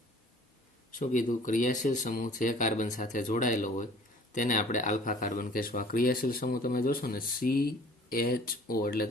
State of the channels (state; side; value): normal; both; correlation 0.50